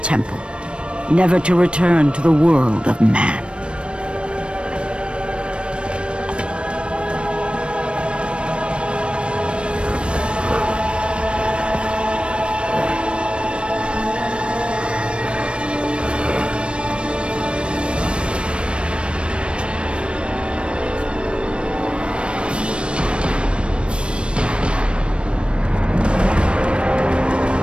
temple, never to return to the world of man.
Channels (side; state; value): left; late; 0.058 ms